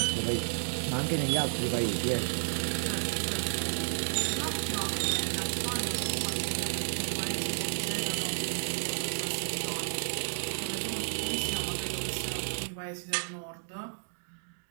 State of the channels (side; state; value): left; silent; digital silence